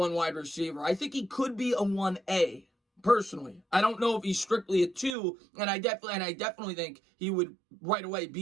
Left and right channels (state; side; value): drops out; left; at 5.2 s